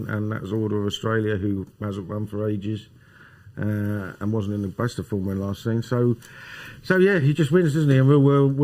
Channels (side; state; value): both; identical; correlation 1.00